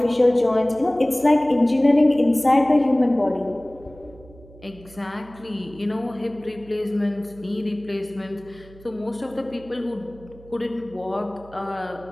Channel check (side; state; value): right; noise; hum, 22 dB below the sound